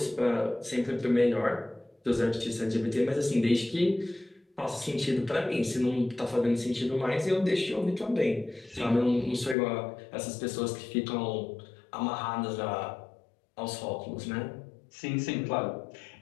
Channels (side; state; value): right; drops out; at 9.6 s